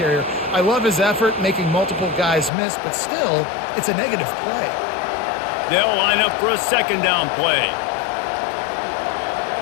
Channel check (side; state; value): right; drops out; at 2.5 s